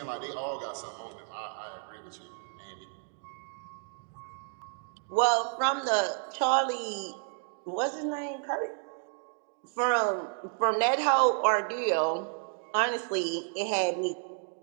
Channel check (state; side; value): silent; left; 57 dB below the other